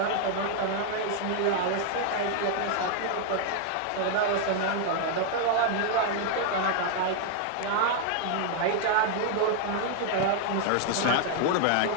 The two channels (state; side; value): different; both; correlation 0.00